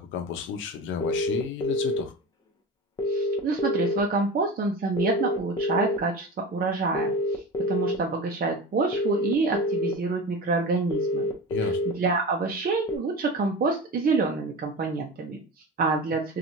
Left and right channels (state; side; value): normal; both; correlation 0.29